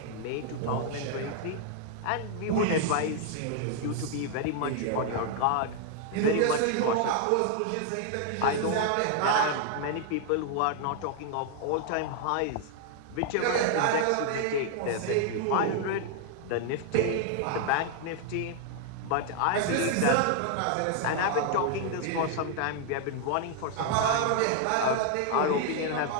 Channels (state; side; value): different; both; correlation 0.00